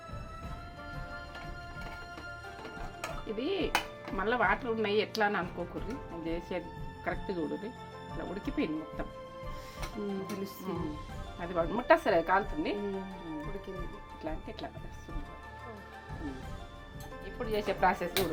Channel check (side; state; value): both; identical; correlation 1.00